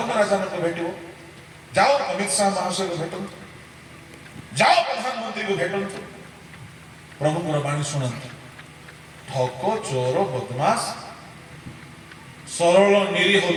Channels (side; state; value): both; identical; correlation 1.00